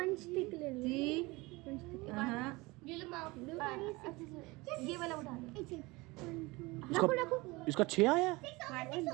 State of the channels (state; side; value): quieter; left; 23.1 dB